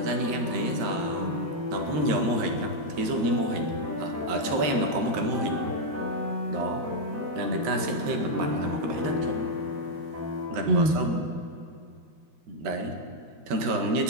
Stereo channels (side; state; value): left; late; 13 ms